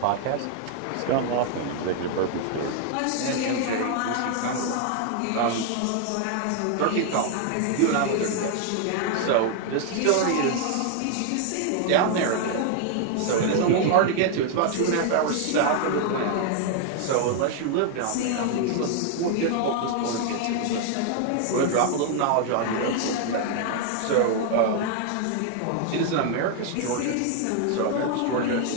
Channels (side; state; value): both; different; correlation 0.00